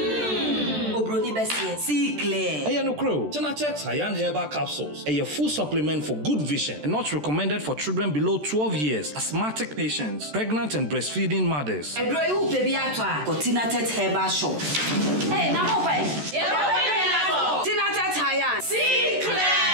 Bessie, see clear. Hey, no crow. Tina tet Hayan herbal capsules. A full supplement for good vision and not recommended for children below 12 years, asthmatic patients, pregnant and breastfeeding mothers. A drawing baby at Tina tet herbal shop. Hey, now wait. Tina tet Hayan. See clear.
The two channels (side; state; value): left; late; 13 ms